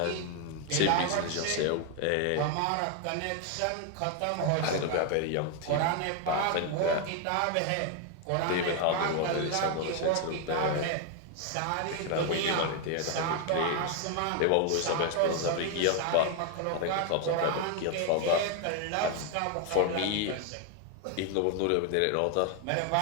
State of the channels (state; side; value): different; both; correlation 0.01